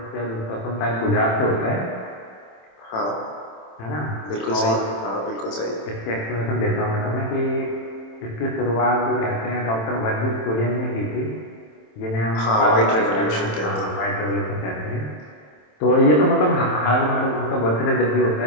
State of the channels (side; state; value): right; late; 27 ms